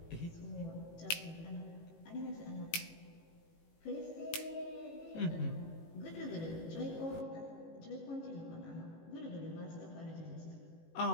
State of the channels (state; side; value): late; right; 18 ms